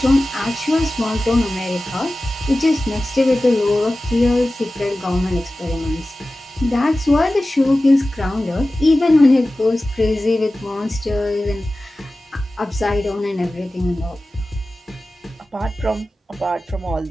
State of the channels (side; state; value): both; normal; correlation 0.96